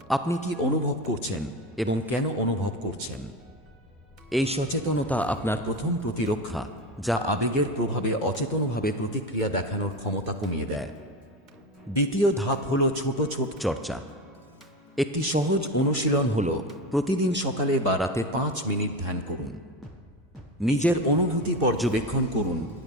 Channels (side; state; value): both; normal; correlation 0.23